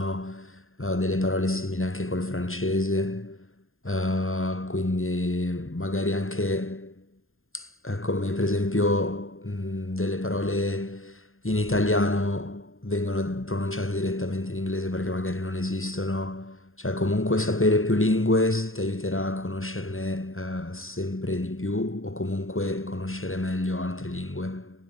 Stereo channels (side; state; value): right; late; 0.61 ms